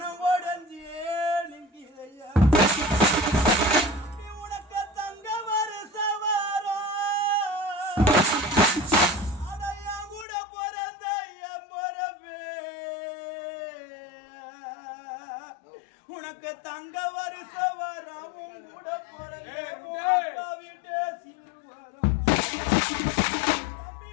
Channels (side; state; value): right; drops out; at 10.2 s